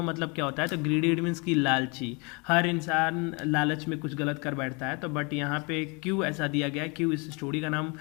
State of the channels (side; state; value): right; quieter; 31.0 dB